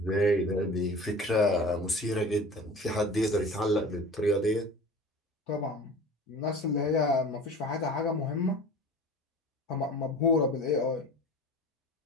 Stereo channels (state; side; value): normal; both; correlation 0.39